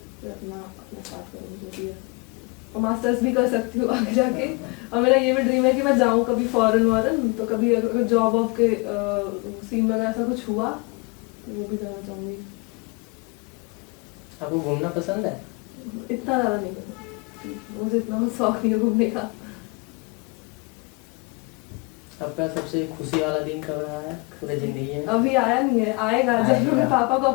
फिर अपना स्टार्ट करूँगी जो भी है, और मास्टर्स भी कर सकती हूँ आगे जाके। और मेरा ये भी ड्रीम है कि मैं जाऊँ कभी फॉरेन, तो कभी अगर जॉब वॉब के सीन में अगर ऐसा कुछ हुआ तो वो भी जाना चाहूँगी। आपको घूमना पसंद है? इतना ज़्यादा नहीं पसंद मुझे, इतना शौक नहीं है घूमने का। आपका सबसे खुशी वाला दिन कब रहा है पूरी जिंदगी में? अभी आया नहीं है, आएगा जब मैं अपने पापा को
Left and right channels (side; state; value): right; quieter; 28.8 dB